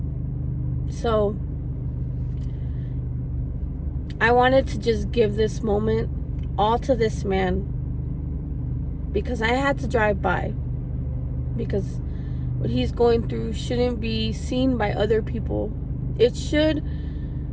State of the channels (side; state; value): both; identical; correlation 1.00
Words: So I wanted to just give this moment all to this man, because I had to drive by, because what he's going through shouldn't be seen by other people. It should,